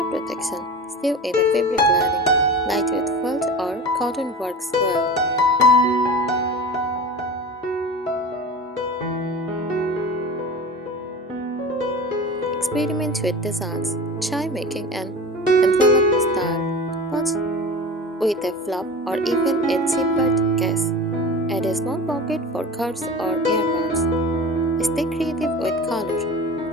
protection. Sew in a fabric lining. Lightweight felt or cotton works well. Experiment with designs. Try making an envelope style pouch with a flap or even a zippered case. Add a small pocket for cards or earbuds. Stay creative with color.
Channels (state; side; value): normal; both; correlation 0.34